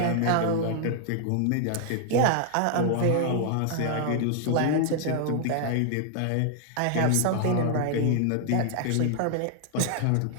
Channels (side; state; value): both; different; correlation 0.00